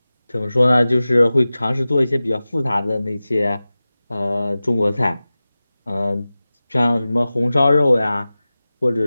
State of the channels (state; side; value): inverted; both; correlation -0.96